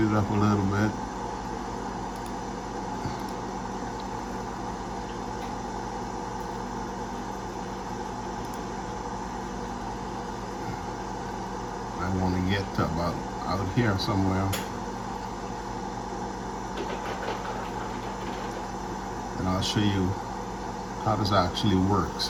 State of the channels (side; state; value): both; identical; correlation 1.00